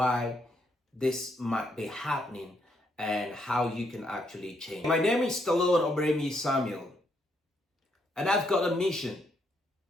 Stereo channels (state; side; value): normal; both; correlation 0.75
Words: this might be happening and how you can actually change. My name is Stallone-Obaraemi Samuel, and I've got a mission